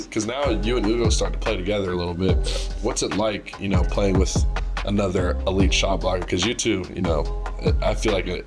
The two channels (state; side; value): identical; both; correlation 1.00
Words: Because now you and Ugo start to play together a little bit. What's it like, playing with another elite shot blocker? Because you two, I feel like